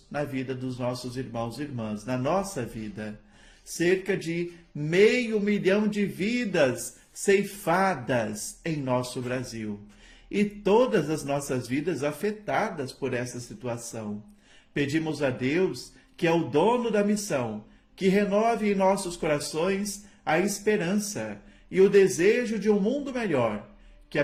na vida dos nossos irmãos e irmãs, na nossa vida. Cerca de 500 mil de vidas ceifadas em nosso Brasil. E todas as nossas vidas afetadas por essa situação. Pedimos a Deus, que é o dono da missão, que renove em nossos corações a esperança e o desejo de um mundo melhor, que a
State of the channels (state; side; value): identical; both; correlation 1.00